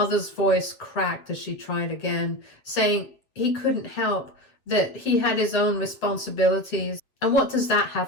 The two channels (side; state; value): right; late; 7.5 ms